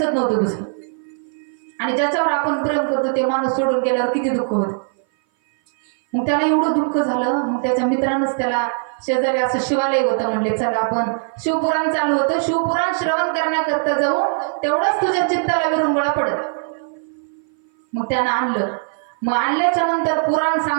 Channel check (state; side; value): silent; left; 58 dB below the other